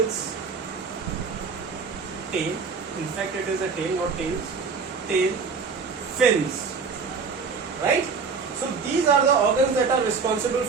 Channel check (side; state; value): left; quieter; 5.1 dB